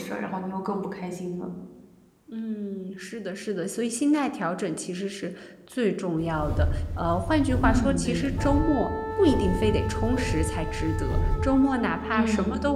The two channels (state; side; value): identical; both; correlation 1.00